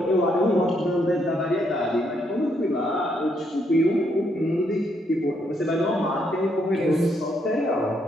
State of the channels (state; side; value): normal; both; correlation 0.75